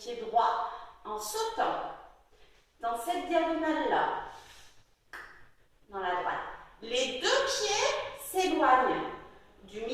droit en sautant dans cette diagonale-là, dans la droite. Les deux pieds s'éloignent du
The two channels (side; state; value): both; identical; correlation 1.00